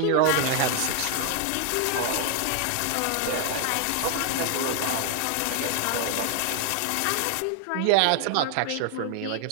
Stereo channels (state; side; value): different; both; correlation 0.00